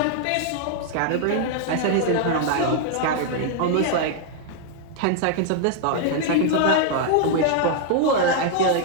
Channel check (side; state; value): both; different; correlation 0.00